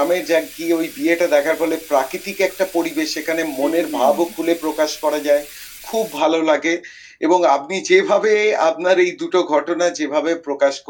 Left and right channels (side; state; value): both; identical; correlation 1.00